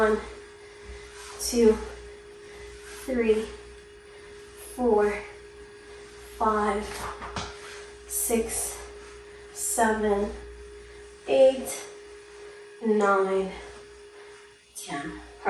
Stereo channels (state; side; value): identical; both; correlation 1.00